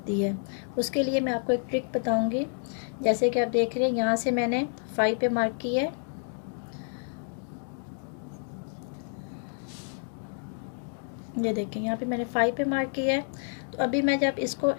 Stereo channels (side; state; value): right; silent; 58 dB below the other